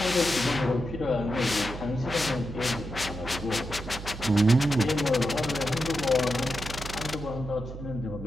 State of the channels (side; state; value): right; noise; hum, 10 dB below the sound